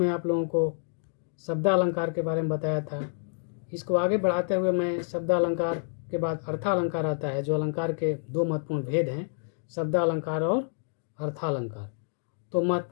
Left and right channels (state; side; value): silent; right; 59 dB below the other